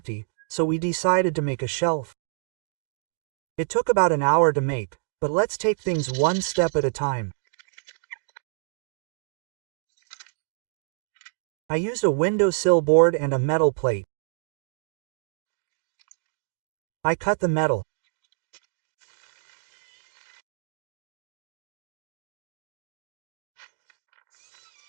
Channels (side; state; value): left; silent; digital silence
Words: so we decided to make a shelf. It took about an hour to make, but let's take things one step at a time. I used a windowsill board and a metal plate. I cut the metal.